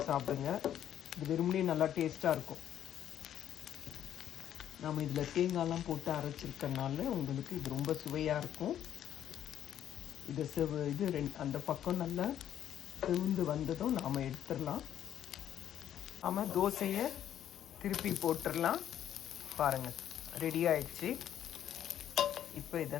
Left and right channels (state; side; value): quieter; right; 10.6 dB